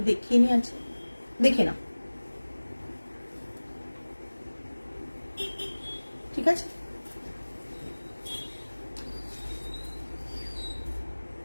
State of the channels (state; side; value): inverted; both; correlation -1.00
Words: দেখিয়ে নিয়ে আছে, দেখে নাও। ঠিক আছে,